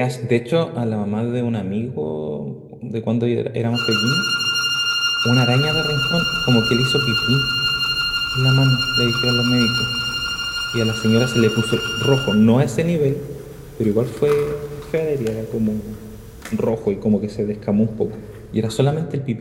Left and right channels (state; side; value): identical; both; correlation 1.00